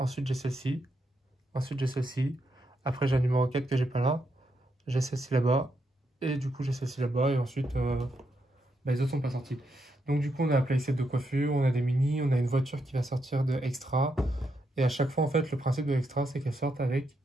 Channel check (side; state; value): both; normal; correlation 0.81